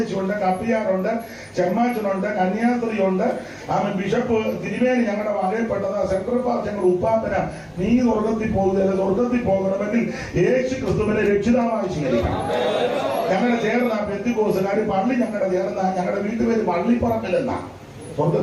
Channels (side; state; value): both; identical; correlation 1.00